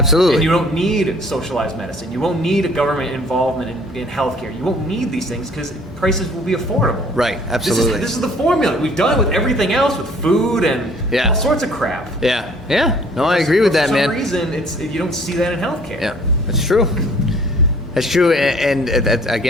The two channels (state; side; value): normal; both; correlation 0.55